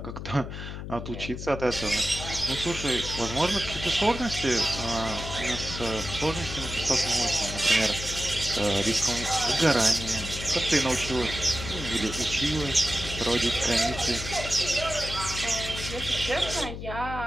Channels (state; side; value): noise; left; hum, 8 dB below the sound